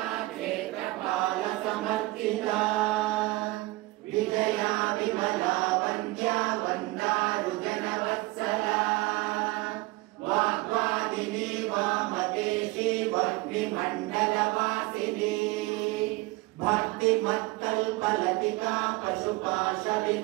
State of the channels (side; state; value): left; quieter; 21.8 dB